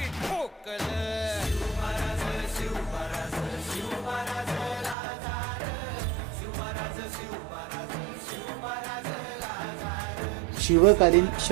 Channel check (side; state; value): left; drops out; at 5.0 s